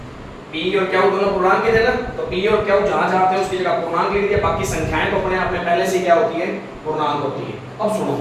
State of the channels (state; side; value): identical; both; correlation 1.00